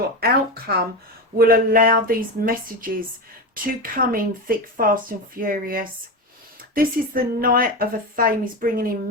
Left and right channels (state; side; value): normal; both; correlation 0.19